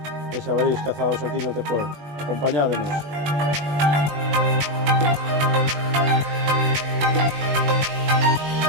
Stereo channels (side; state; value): left; late; 20 ms